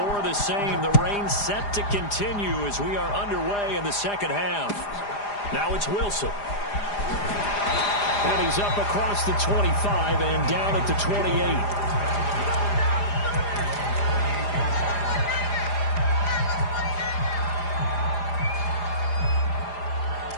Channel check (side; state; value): right; late; 4.9 ms